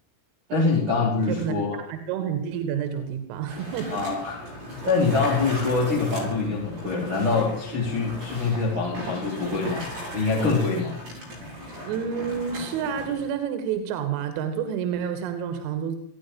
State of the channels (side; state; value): left; late; 17 ms